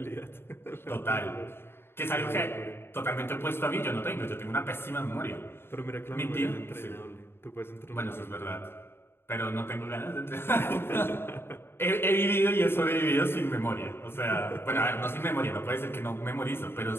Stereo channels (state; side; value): late; right; 0.11 ms